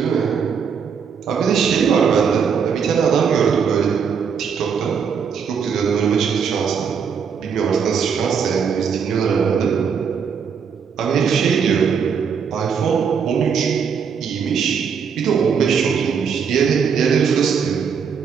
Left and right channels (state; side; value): quieter; left; 6.6 dB